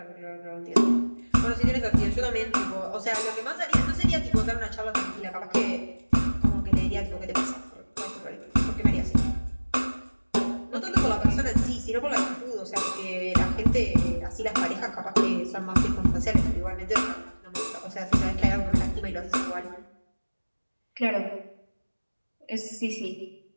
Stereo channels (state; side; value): inverted; both; correlation -1.00